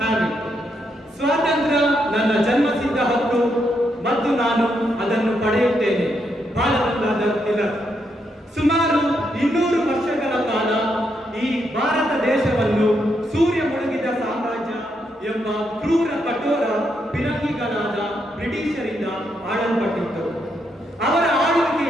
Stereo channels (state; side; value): normal; both; correlation 0.79